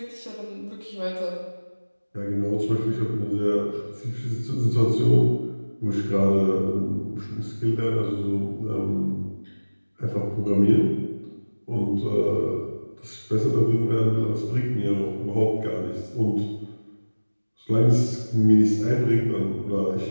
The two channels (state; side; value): inverted; both; correlation -1.00